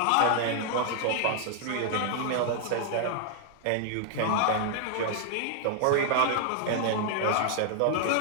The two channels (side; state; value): both; different; correlation 0.00